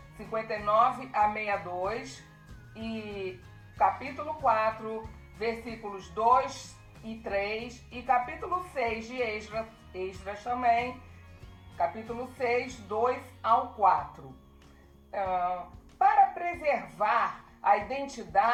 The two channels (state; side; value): identical; both; correlation 1.00